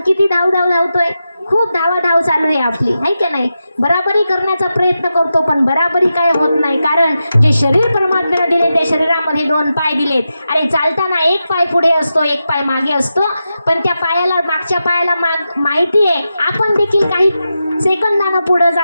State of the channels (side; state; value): both; inverted; correlation -0.90